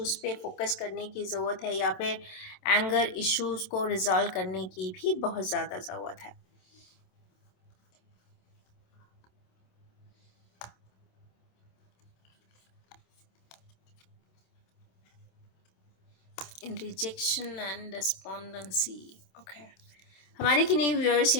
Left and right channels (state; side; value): late; right; 27 ms